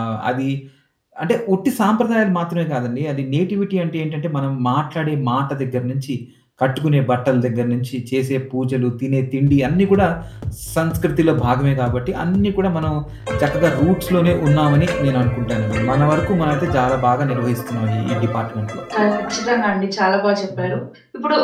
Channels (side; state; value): both; identical; correlation 1.00